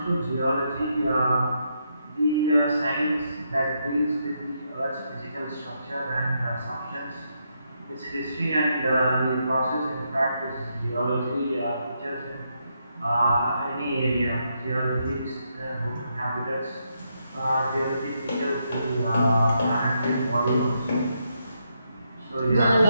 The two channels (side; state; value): both; inverted; correlation -0.80